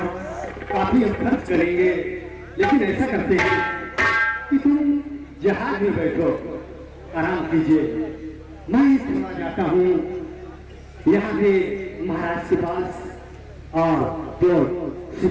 काफी हम खर्च करेंगे, लेकिन ऐसा करते हैं कि तुम जहाज में बैठो, आराम कीजिए। मैं थोड़ा जाता हूँ यहाँ पे महाराज के पास और जो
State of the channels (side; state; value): both; identical; correlation 1.00